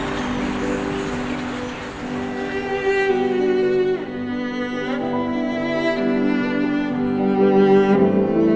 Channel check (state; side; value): identical; both; correlation 1.00